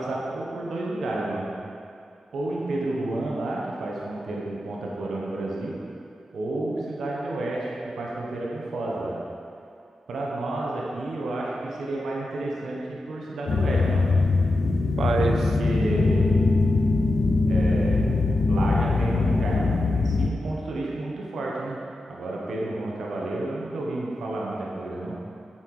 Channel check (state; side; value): normal; both; correlation 0.89